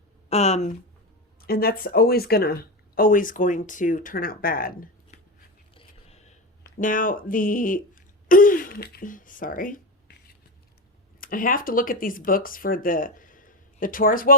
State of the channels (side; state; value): both; normal; correlation 0.18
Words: And that's always going to turn out bad. Now, sorry. I have to look at these books for the Taurus.